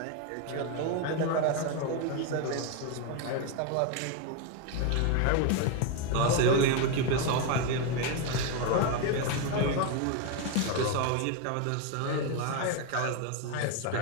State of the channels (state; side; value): different; both; correlation 0.02